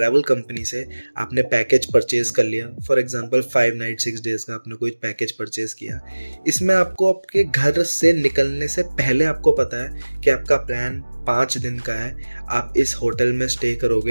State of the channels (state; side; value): inverted; both; correlation -1.00